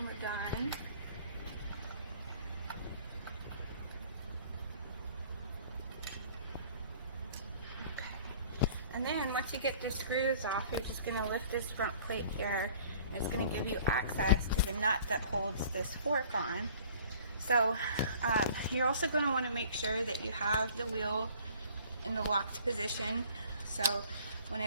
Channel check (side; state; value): both; inverted; correlation -0.51